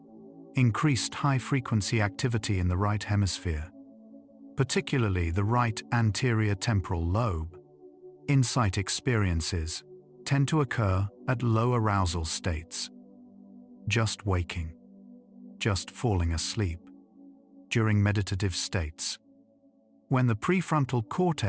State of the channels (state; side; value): identical; both; correlation 1.00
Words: increased high-frequency activity in the right hemisphere, particularly the right anterior temporal lobe. Insight experiences tend to occur at low arousal states, just waking, just falling asleep, during meditative states, when the prefrontal